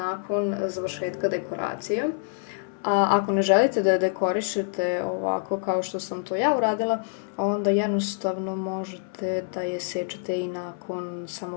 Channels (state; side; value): silent; right; 57 dB below the other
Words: završetka dekoracije. A ako ne želite da je dekorišete ovako kao što sam to ja uradila, onda jednostavno možete da je sečete i nakon